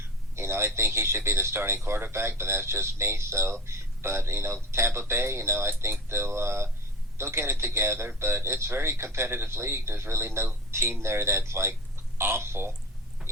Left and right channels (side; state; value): both; normal; correlation 0.32